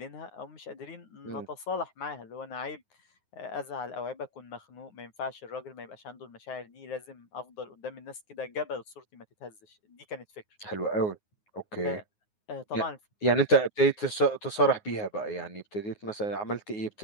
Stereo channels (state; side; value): late; right; 9.5 ms